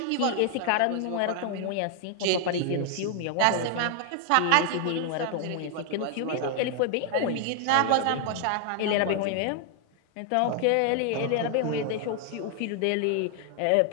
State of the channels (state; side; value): different; both; correlation 0.00